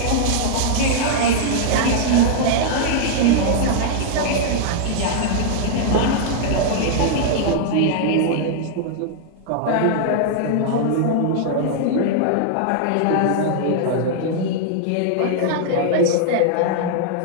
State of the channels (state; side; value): different; both; correlation -0.01